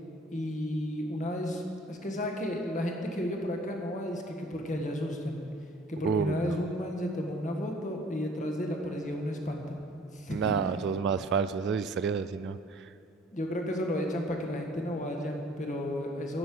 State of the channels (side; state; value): both; normal; correlation 0.54